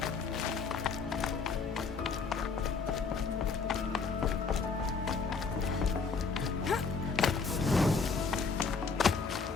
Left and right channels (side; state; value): right; quieter; 4.9 dB